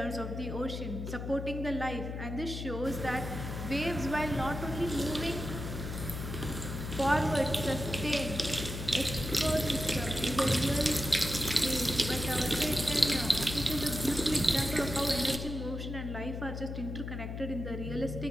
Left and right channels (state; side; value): noise; left; hum, 6 dB below the sound